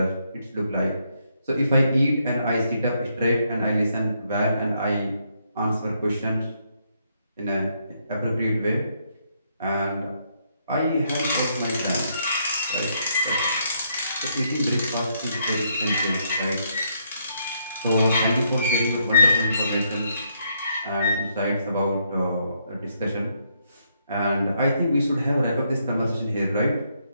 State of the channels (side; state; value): both; inverted; correlation -0.75